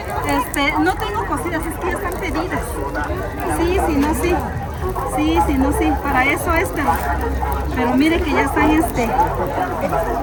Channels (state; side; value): identical; both; correlation 1.00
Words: No tengo cositas, es que ya están pedidas. Sí, sí, no, sí. Sí, sí, no, sí. Para eso es, pero mire que ya están ya